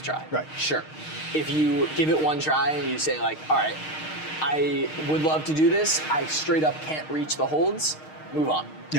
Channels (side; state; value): right; late; 6.5 ms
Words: try. Right. Sure. If you give it 1 try and you say like, all right, I would love to do this, I straight up can't reach the holds, move on.